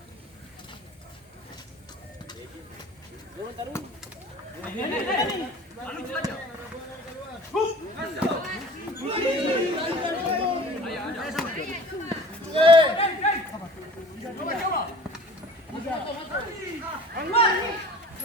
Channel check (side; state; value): both; normal; correlation 0.45